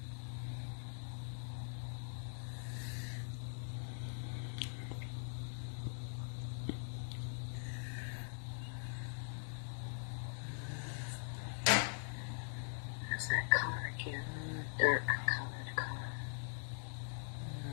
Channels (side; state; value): right; silent; digital silence